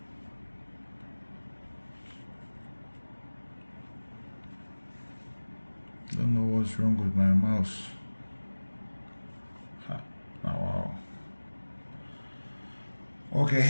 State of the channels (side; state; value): both; inverted; correlation -1.00